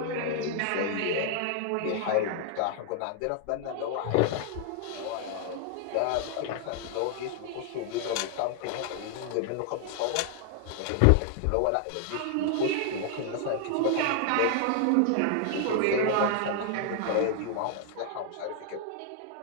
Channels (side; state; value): both; different; correlation 0.00